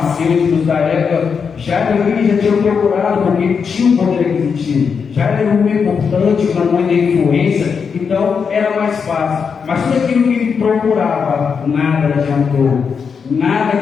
da época, já tinham procurado, porque ele tinha um poder aquisitivo, já era um homem importante, uma mãe de influência, então era mais fácil. Mas tudo aquilo que ele procurava, nada adiantou,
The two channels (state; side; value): quieter; right; 6.1 dB